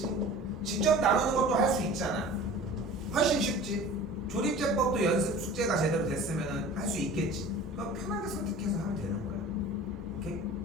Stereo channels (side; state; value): both; normal; correlation 0.41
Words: 직접 나누는 것도 할 수 있잖아. 훨씬 쉽지. 조립제법도 연습 숙제가 제대로 됐으면 할 수 있겠지. 그럼 편하게 선택해서 하면 되는 거야. 오케이?